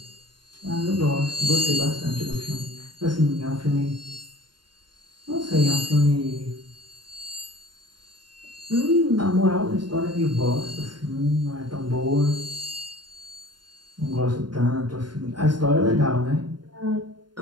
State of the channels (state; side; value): late; left; 0.71 ms